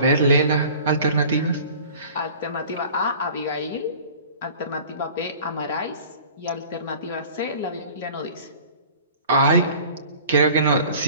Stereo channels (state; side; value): inverted; both; correlation -0.45